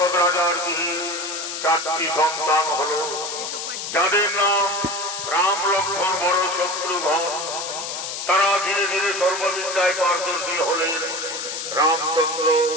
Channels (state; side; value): noise; left; hiss, 6 dB below the sound